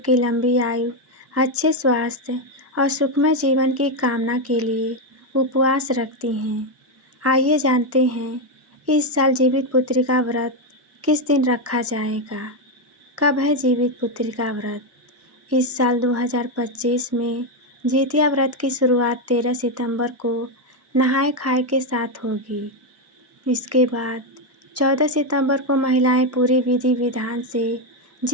लंबी आयु, अच्छे स्वास्थ्य और सुखमय जीवन की कामना के लिए उपवास रखती हैं। आइए जानते हैं इस साल जीवित पुत्री का व्रत किस दिन रखा जाएगा। कब है जीवित पुत्री का व्रत? इस साल 2025 में जितिया व्रत की शुरुआत 13 सितंबर को नहाए खाए के साथ होगी। इसके बाद 14 सितंबर को महिलाएं पूरी विधि विधान से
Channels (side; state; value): both; normal; correlation 0.06